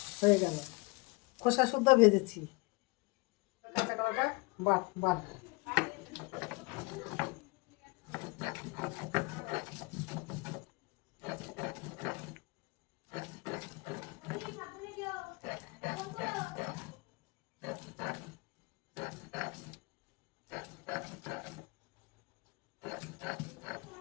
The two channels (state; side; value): quieter; right; 26.8 dB